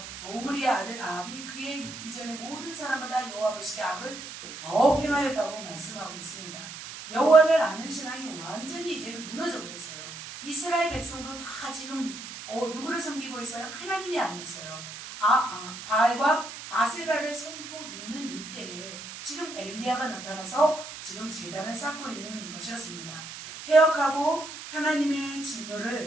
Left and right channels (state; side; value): noise; right; hiss, 11 dB below the sound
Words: 아들 아합이 그의 이전의 모든 사람마다 여호와 보시기에 악을 더욱 행하였다고 말씀하고 있습니다. 여호와를 아는 신앙이 완전히 이제는 무너져 버렸어요. 이스라엘 백성도 다 지금 누구를 섬기고 있어요? 하나님이 아니었어요. 바알과 아세라를 섬기고 있는 이때에 지금 엘리야가 나타나서 지금 제단을 쌓고 있는 것이었습니다. 폐역하고 하나님의